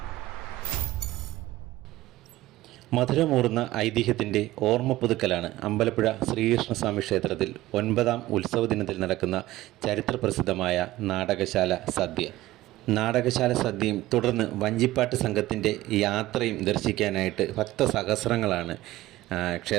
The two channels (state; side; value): quieter; left; 16.7 dB